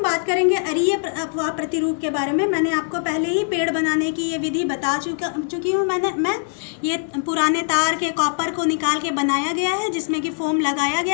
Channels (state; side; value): silent; right; digital silence